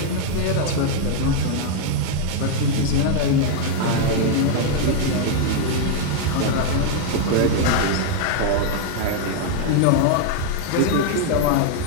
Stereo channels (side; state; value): both; different; correlation 0.00